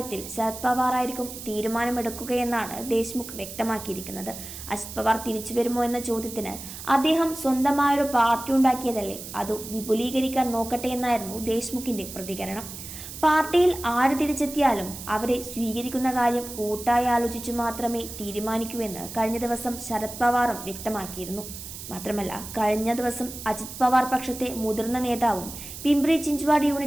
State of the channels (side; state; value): right; noise; hiss, 11 dB below the sound